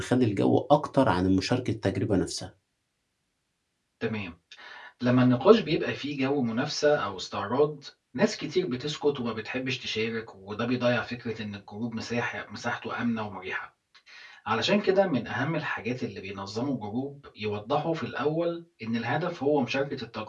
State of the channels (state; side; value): identical; both; correlation 1.00